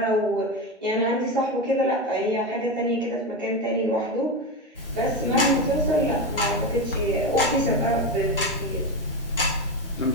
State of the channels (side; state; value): both; normal; correlation 0.16